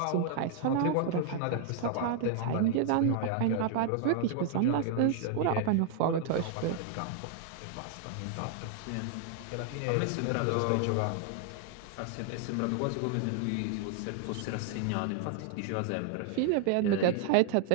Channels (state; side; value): different; both; correlation 0.00